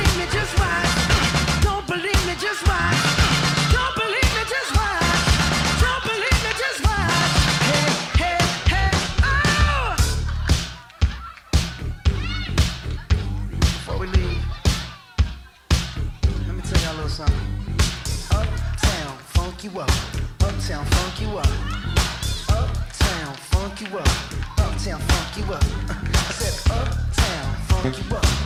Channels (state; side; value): identical; both; correlation 1.00